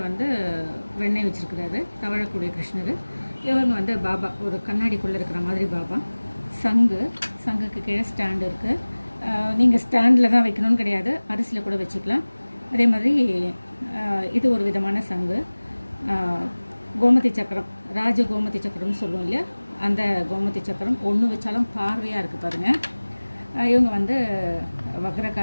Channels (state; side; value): inverted; both; correlation -1.00